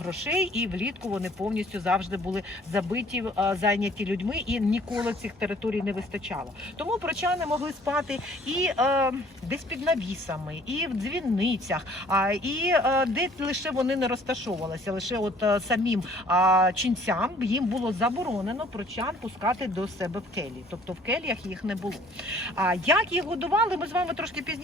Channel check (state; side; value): normal; both; correlation 0.56